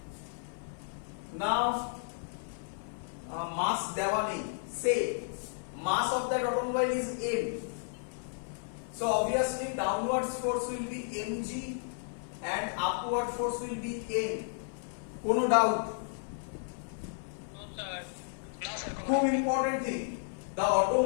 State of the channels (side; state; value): right; silent; 56 dB below the other